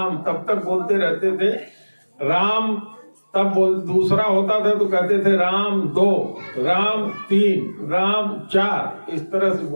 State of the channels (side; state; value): both; inverted; correlation -1.00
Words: तब तक बोलते रहते थे राम। तब दूसरा होता था तो कहते थे राम 2, राम 3, राम 4, इस तरह से